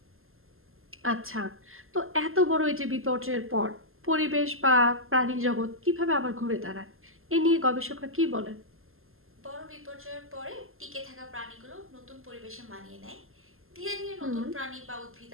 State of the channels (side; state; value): left; late; 0.61 ms